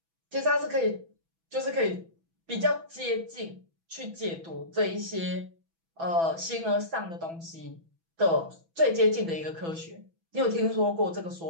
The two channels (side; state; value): left; late; 6.1 ms